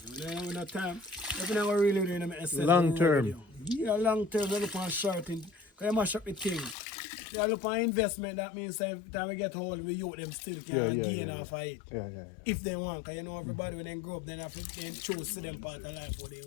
When I have no time, if I never really do it, Long term. Yeah, long term, I look on short thing. Because I mash up the thing. I look on investment, that means every time we get hold, we youth them still can gain off of it. Yeah. If they want, because you know everybody when they grow up, then have to then choose to them part of life what they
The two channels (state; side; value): drops out; right; at 6.8 s